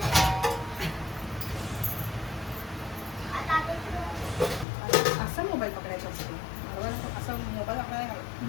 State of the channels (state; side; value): drops out; right; at 4.7 s